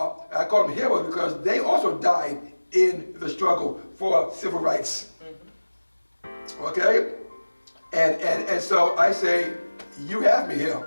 call them heroes because they also died in the struggle for civil rights. Okay? And so I say, you have me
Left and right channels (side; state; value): both; inverted; correlation -1.00